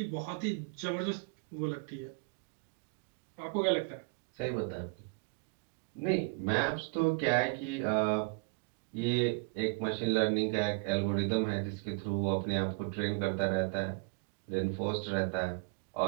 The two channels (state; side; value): quieter; left; 32.6 dB